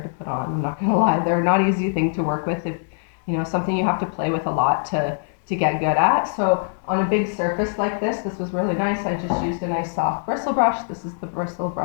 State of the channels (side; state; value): right; silent; digital silence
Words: to put on. I'm not gonna lie, they're not easy thing to work with. If you know, something you have to play with a lot to get good at. So on a big surface like this was really nice. I just used a nice soft bristle brush. This is the bristle